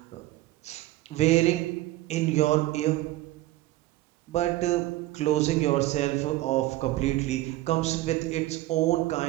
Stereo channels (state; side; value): quieter; left; 16.8 dB